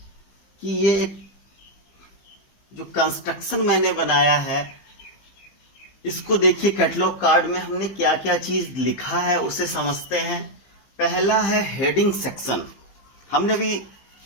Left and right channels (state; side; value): late; right; 15 ms